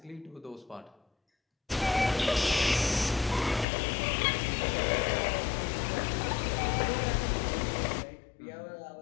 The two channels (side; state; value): right; drops out; at 3.7 s